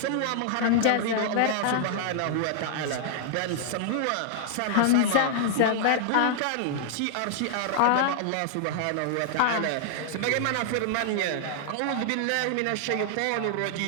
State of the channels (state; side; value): different; both; correlation -0.01